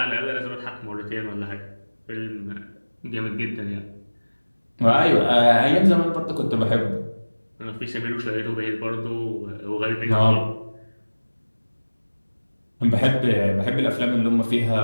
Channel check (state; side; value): inverted; both; correlation -1.00